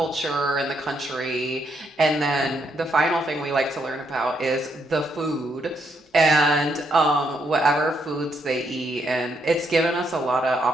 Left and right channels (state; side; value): normal; both; correlation 0.76